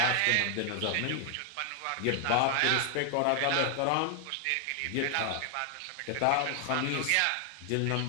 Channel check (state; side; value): different; both; correlation 0.00